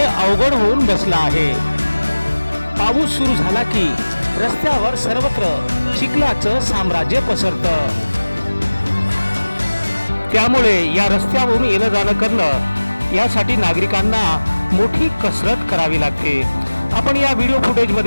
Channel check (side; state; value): both; inverted; correlation -1.00